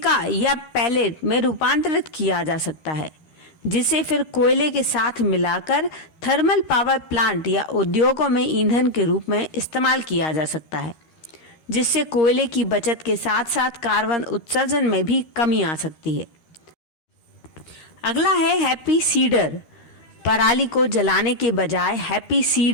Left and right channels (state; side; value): late; right; 13 ms